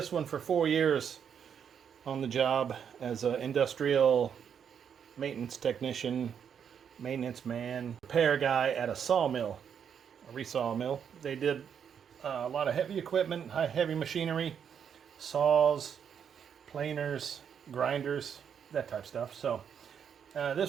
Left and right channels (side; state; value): left; quieter; 7.8 dB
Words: one for 4 years on the job as an industrial maintenance technician, maintenance man, repair guy at a sawmill, a resaw mill. They did a lot of heavy equipment, heavy machinery, saws, planers, grinders, that type of stuff. So